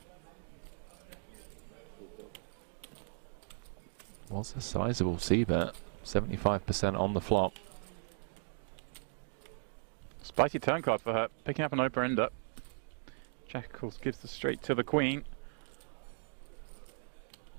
Was a sizable c-bet, 75% on the flop. Spicy turn card for her, picking up an open ender. Jack, of course, gives the straight to the queen.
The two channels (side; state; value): left; silent; digital silence